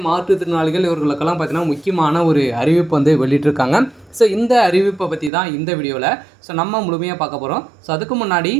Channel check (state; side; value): drops out; left; at 5.3 s